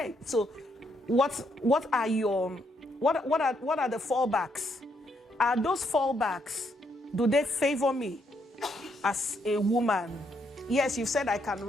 so what are the fallbacks? Are those fallbacks, do they favor me as a woman? Yes, you said I can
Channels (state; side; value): normal; both; correlation 0.74